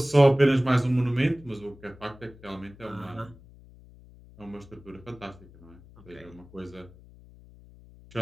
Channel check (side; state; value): left; noise; hum, 22 dB below the sound